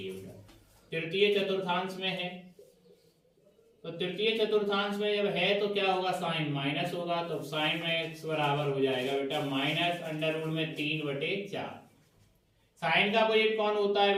है। तृतीय चतुर्थांश में है, तो तृतीय चतुर्थांश में जब है तो क्या होगा साइन माइनस होगा, तो साइन में x बराबर हो जाएगा बेटा माइनस अंडर रूट में 3/4। साइन का अपोजिट कौन होता है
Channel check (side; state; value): both; identical; correlation 1.00